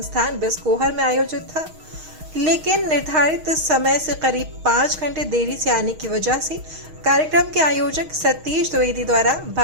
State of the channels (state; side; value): late; left; 6.4 ms